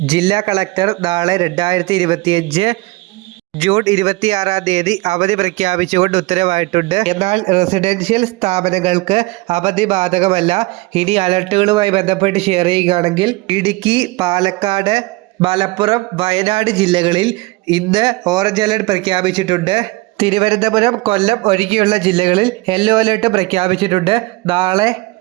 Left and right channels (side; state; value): left; quieter; 22.5 dB